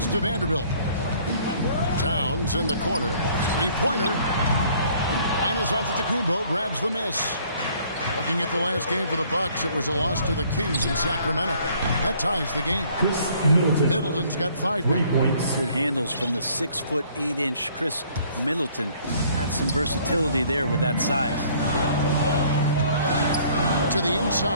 to Vanderbilt. Towns in the corner. Three-pointer. Giannis Antetokounmpo grabs the miss. Looking at the last game for the Bucks, it was a loss to the Kings in Sacramento. That ties the game. Chris Middleton. Middleton's got 5 3 points. Good handles from the 6'8" Chris Middleton. Had some versatility there with that size. To the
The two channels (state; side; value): inverted; both; correlation -0.59